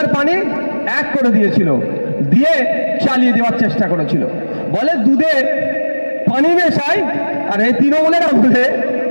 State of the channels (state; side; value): inverted; both; correlation -1.00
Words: পানি এক করে দিয়েছিল, দিয়ে চালিয়ে দেওয়ার চেষ্টা করেছিল। বলে দুধে পানি মেশায়, আর এই তৃণমূলের আমলে